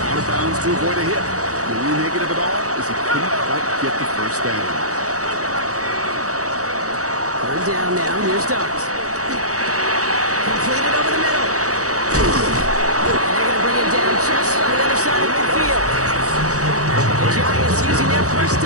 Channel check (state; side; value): late; left; 0.66 ms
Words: of bounds to avoid a hit. The only negative at all is he couldn't quite get the first down. 3rd down now. Here's Dobbs. Completed over the middle. And they're going to bring it down just on the other side of midfield. The Giants using their first